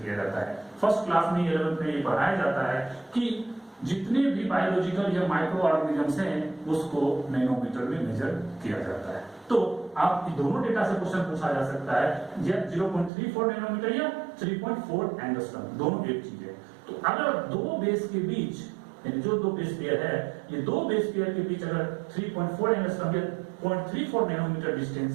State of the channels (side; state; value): left; drops out; at 13.1 s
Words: जाता है। फर्स्ट क्लास में 11th में ये पढ़ाया जाता है कि जितने भी बायोलॉजिकल या माइक्रो ऑर्गेनिजम्स हैं उसको नैनोमीटर में मेजर किया जाता है। तो आप दोनों डेटा से क्वेश्चन पूछा जा सकता है, या 0.34 नैनोमीटर या 3.4 एंगस्ट्रॉम, दोनों एक चीज है। तो अगर दो बेस के बीच, यानी जो दो बेस पेयर है, ये दो बेस पेयर के बीच अगर 3.4 एंगस्ट्रॉम या 0.34 नैनोमीटर